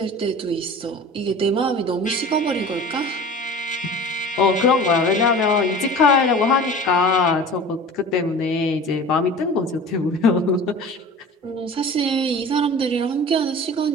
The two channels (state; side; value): normal; both; correlation 0.38